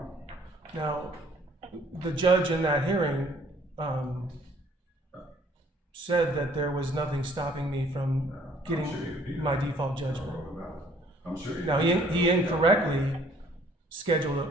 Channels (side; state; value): both; normal; correlation 0.59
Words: Now, the judge in that hearing said that there was nothing stopping me from getting my default judgment. I'm sure. Now, he incorrectly